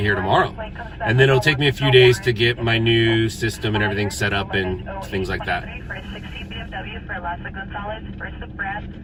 here tomorrow. And then it'll take me a few days to get my new system and everything set up and things like that. For a 60 BMW for Lassa Gonzalez, first of Brad,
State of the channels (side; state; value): both; identical; correlation 1.00